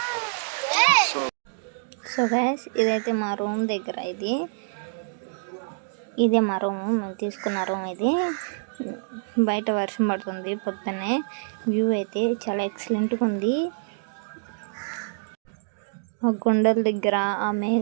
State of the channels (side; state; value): left; silent; digital silence